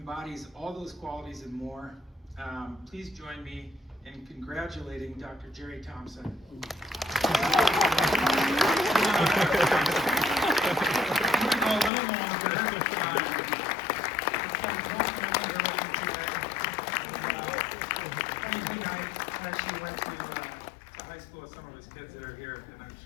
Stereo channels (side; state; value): right; drops out; at 11.9 s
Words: all those qualities and more. Please join me in congratulating Dr. Jerry Thompson. I'm going to go a little longer. Funny thing, I actually went to high school with some of his kids that are here, and I'm